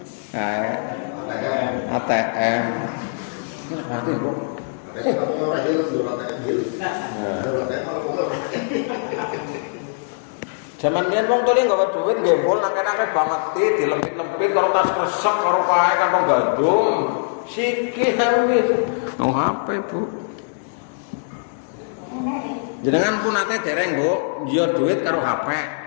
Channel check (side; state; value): right; silent; digital silence